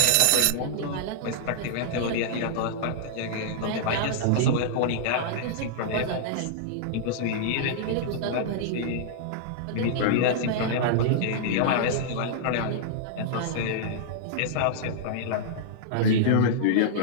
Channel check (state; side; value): different; both; correlation -0.02